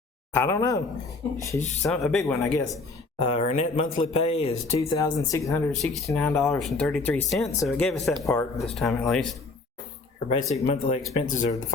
I don't know. She's a big one, I guess. Her net monthly pay is $2,669.33. So it gave us that part this time at least. Her basic monthly expenses are the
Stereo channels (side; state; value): right; quieter; 3.8 dB